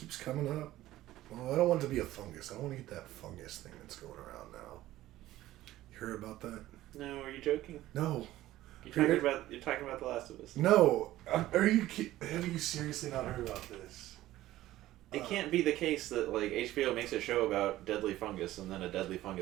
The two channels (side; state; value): left; quieter; 15.2 dB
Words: coming up, well, I don't want it to be a fungus. I don't want to get that fungus thing that's going around now. You heard about that? No, are you joking? No. You're talking about The Last of Us. No. Have you seriously not heard about this? It can't be the case that like HBO makes a show about deadly fungus and then a deadly